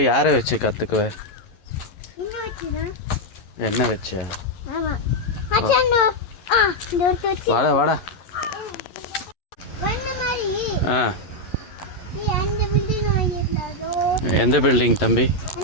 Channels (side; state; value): right; late; 11 ms